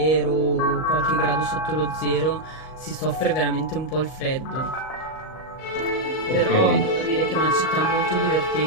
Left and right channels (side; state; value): right; late; 38 ms